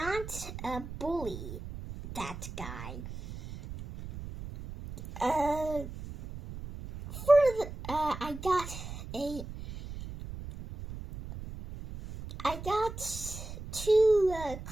bully that guy. I got two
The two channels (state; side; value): noise; right; rumble, 10 dB below the sound